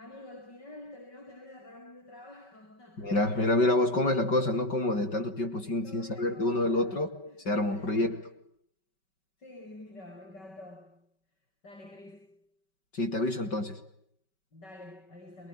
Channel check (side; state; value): right; late; 5.2 ms